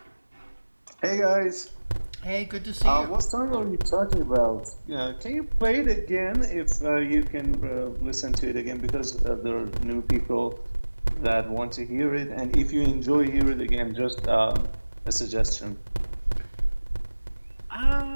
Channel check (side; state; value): both; inverted; correlation -1.00